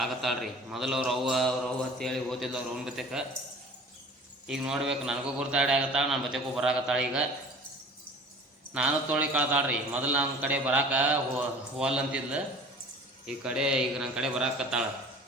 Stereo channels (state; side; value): normal; both; correlation 0.44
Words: ಮೊದಲು ಅವ್ರವ್ವ ಅಂತೇಳಿ ಓದಿದ್ಲು ಅವ್ರ ಅವ್ನ ಬತೆಕ. ಈಗ ನೋಡ್ಬೇಕು, ನನಗೂ ಗುರ್ತಾಡಿ ಆಗತ್ತಾಳ, ನನ್ನ ಬತೆಗೂ ಬರಾಕತ್ತಾಳ. ಈಗ ನಾನು ತೋಳಿ ಕಳ್ತಾಳ್ರಿ. ಮೊದಲು ನನ್ನ ಕಡೆ ಬರಾಕ ಹೋಲ್ ಅಂತಿದ್ಲು, ಈ ಕಡೆ ಈಗ ನನ್ನ ಕಡೆ ಬರಾಕತ್ತಾಳ.